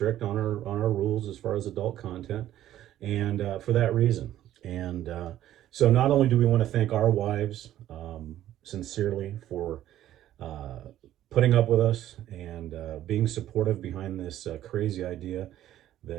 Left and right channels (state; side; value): quieter; left; 12.7 dB